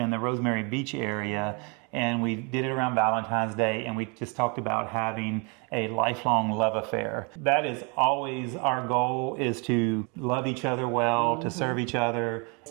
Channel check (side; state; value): left; quieter; 33.0 dB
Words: the Rosemary Beach area. And we did it around Valentine's Day, and we just talked about having a lifelong love affair. That is always our goal, is to love each other well, to serve each other.